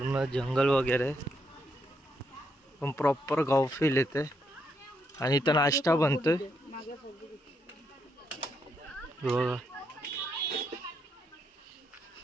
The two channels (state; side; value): normal; both; correlation 0.77